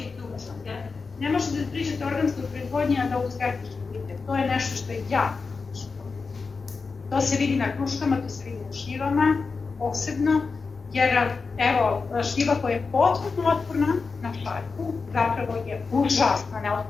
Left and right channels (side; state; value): right; quieter; 4.6 dB